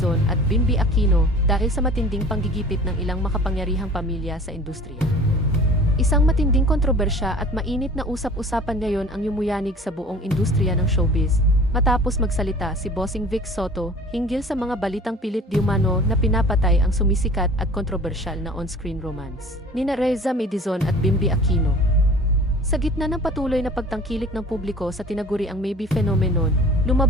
at Bimby Aquino dahil sa matinding panggigipit ng ilang makapangyarihang pamilya sa industriya. Isang matinding kontrobersya at mainit na usap-usapan ngayon ang yumuyanig sa buong industriya ng showbiz, matapos magsalita si Bossing Vic Soto hinggil sa mga balitang pilit diumano na pinapatay ang sumisikat at kontrobersyal na on-screen romance nina Raisa Medizon at Bimby Aquino. Sa gitna ng patuloy na pagtangkilik ng publiko sa tinaguriang maybe phenomenon,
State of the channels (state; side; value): normal; both; correlation 0.45